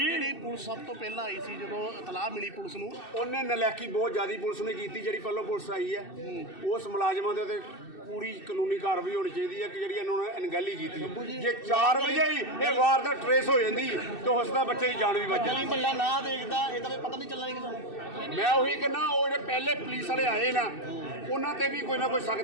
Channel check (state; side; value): late; right; 2.6 ms